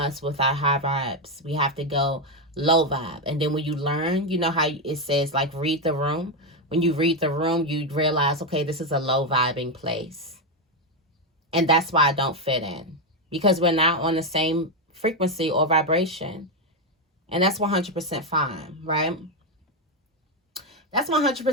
with our high vibes. We have to go low vibe. And then when you learn, you know how it says, like, read the room. When you read the room, you realize, okay, this is a low vibing place. And that's why I don't fit in. Because we're not on the same frequency or vibration. And that's 100% fine, right? That's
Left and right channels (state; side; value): normal; both; correlation 0.07